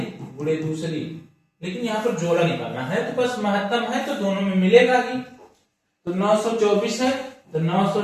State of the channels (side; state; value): both; identical; correlation 1.00